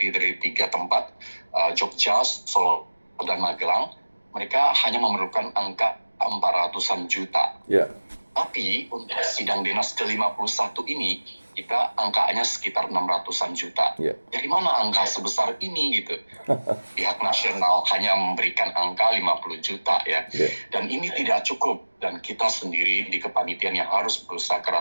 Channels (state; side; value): inverted; both; correlation -1.00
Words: dari 3 tempat, Jogja, Solo, dan Magelang, mereka hanya memerlukan angka 400-an juta. Ya. Tapi untuk sidang dinas ke-51 ini, kita angkanya sekitar 600-an juta. Ya. Dari mana angka sebesar ini gitu? Pihak nasional hanya memberikan angka 50 juta ya. Ya. Dan ini tidak cukup. Dan kita sendiri di kepanitiaan yang harus berusaha